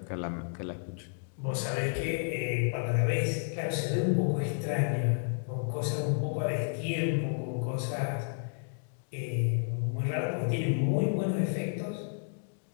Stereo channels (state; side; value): silent; right; digital silence